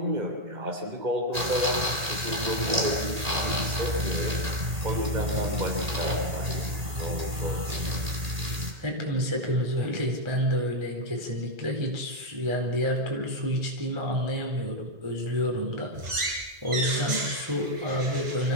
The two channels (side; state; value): left; late; 1.8 ms